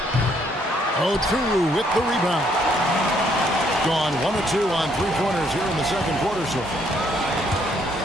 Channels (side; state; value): both; normal; correlation 0.69